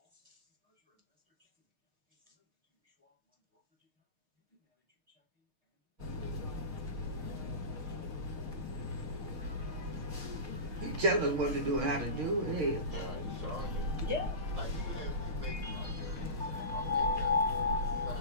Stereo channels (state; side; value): late; left; 6.5 ms